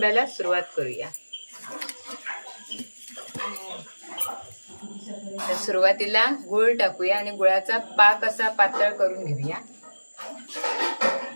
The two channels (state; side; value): inverted; both; correlation -1.00